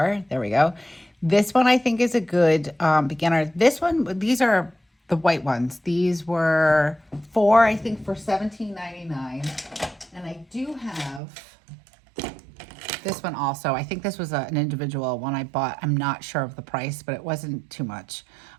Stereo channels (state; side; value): drops out; left; at 11.2 s